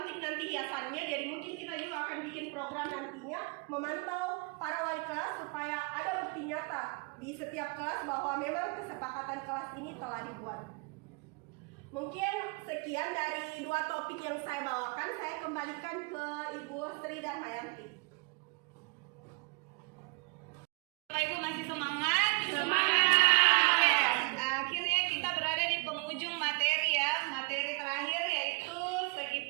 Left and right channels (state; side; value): quieter; left; 31.7 dB